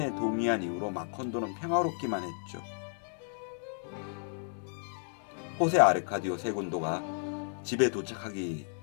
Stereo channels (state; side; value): silent; right; 56 dB below the other